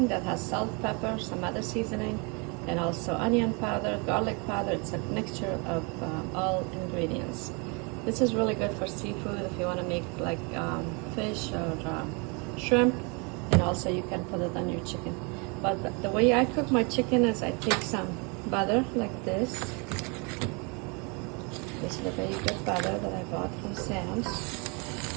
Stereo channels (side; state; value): left; quieter; 32.0 dB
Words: that has salt, pepper, some other seasoning, and also onion powder, garlic powder. It's a mixture of all ingredients. This is really good for seafood if you want to make like fish or shrimp, and also you can put it on your chicken. But the way I cook my chicken is I take some butter like this. This is a very good butter that I bought from Sam's.